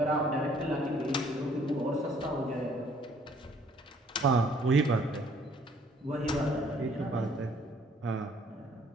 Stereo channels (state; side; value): normal; both; correlation 0.61